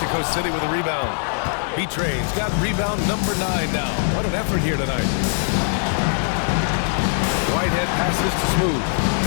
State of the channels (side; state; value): right; silent; 65 dB below the other